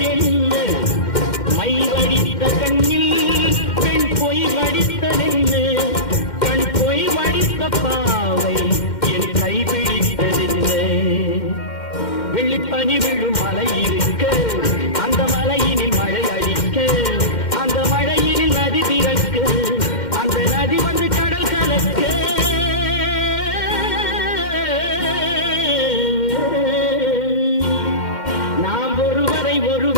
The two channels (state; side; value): late; right; 2.1 ms